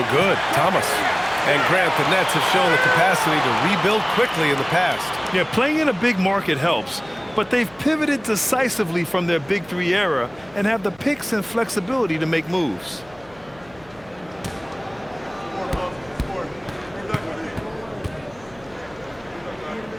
good. Thomas. And Grant, the Nets have shown the capacity to rebuild quickly in the past. Yeah, playing in a big market helps. But they've pivoted decisively from their Big Three era and have the picks and flexibility to make moves.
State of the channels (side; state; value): left; noise; hum, 25 dB below the sound